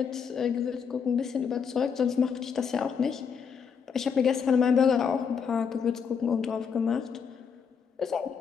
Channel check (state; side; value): quieter; right; 6.6 dB